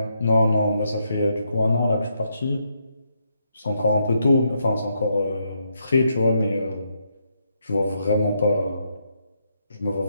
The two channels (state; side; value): inverted; both; correlation -0.79